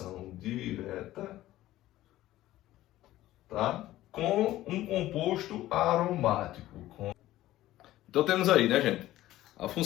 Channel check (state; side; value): quieter; right; 15.2 dB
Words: tá? Com um composto aromático. Então temos aí, né, gente? A